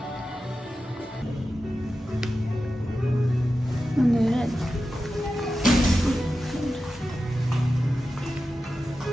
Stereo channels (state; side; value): normal; both; correlation 0.92